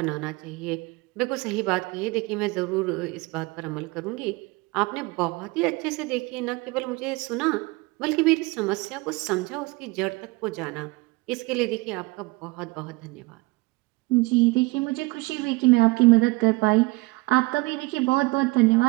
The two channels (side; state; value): left; quieter; 23.7 dB